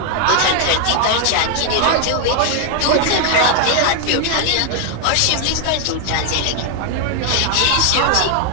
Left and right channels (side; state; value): both; different; correlation 0.00